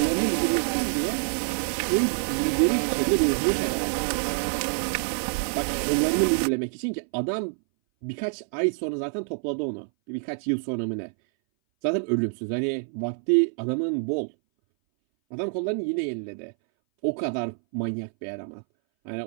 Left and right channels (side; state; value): left; silent; 59 dB below the other